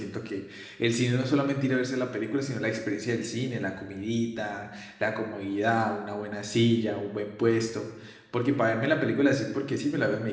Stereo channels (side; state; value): both; identical; correlation 1.00